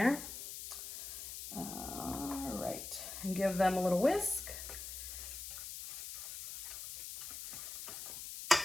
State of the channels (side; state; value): left; noise; hiss, 8 dB below the sound